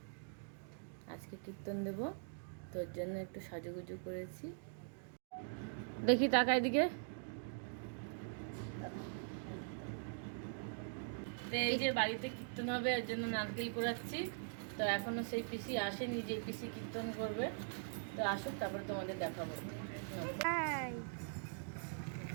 আজকে কীর্তন দেব, তোর জন্য একটু সাজুগুজু করেছি। দেখি টাকা এদিকে। তো এই যে বাড়িতে কীর্তন হবে, এর জন্য নারকেল কোড়াচ্ছি। তো এখনো সেই পিসি আসেনি যে পিসি কীর্তন করবে। তো আসুক, তারপরে তোমাদের দেখাবো।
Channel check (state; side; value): silent; left; digital silence